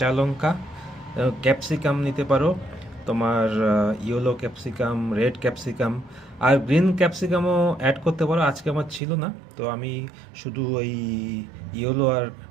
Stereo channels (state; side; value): drops out; left; at 9.0 s